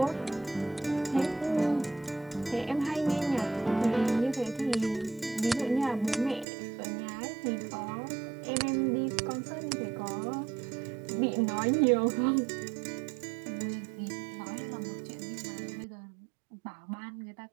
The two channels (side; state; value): left; drops out; at 6.5 s